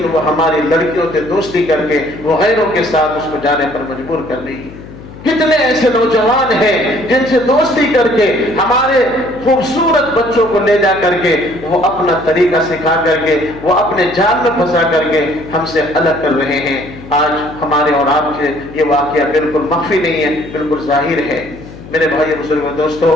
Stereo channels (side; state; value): left; noise; hum, 16 dB below the sound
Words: وہ ہماری لڑکیوں سے دوستی کر کے وہ غیروں کے ساتھ اس کو جانے پر مجبور کر رہی ہے۔ کتنے ایسے نوجوان ہیں جن سے دوستی کر کے ہمارے خوبصورت بچوں کو لے جا کر کے وہ اپنا طریقہ سکھا کر کے وہ اپنے جال میں پھنسا کر کے ہم سے الگ کر رہے ہیں۔ آج ہمارے اور آپ سے یہ واقعہ بالکل مخفی نہیں ہے، بالکل ظاہر ہے۔ میرے بھائی بزرگوں دوستو،